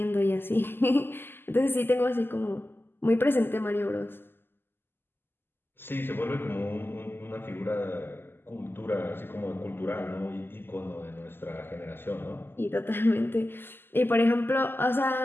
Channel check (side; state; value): right; late; 0.10 ms